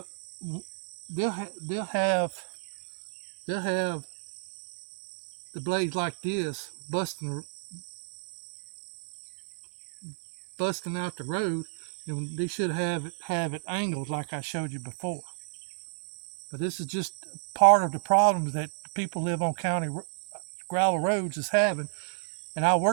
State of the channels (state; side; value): silent; left; 57 dB below the other